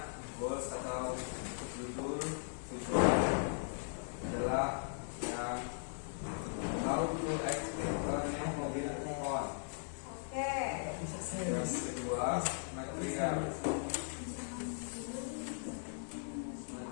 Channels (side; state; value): right; silent; digital silence